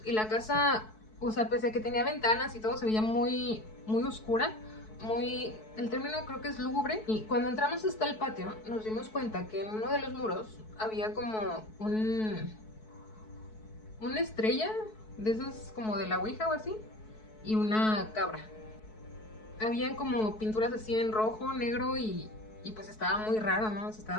y la casa, o sea, pese a que tenía ventanas y todo, se veía muy, muy oscura, muy, el término creo que es lúgubre. Y cuando entramos hasta el patio nos dimos cuenta que en uno de los muros había como una estrella de esas como de la ouija o así, y una cabra. Habían como pinturas así en rojo, negro y pues estaba muy raro, ¿no? O sea,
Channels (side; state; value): right; late; 4.6 ms